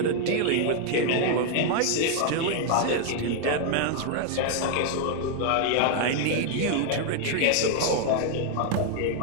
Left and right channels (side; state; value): both; different; correlation 0.00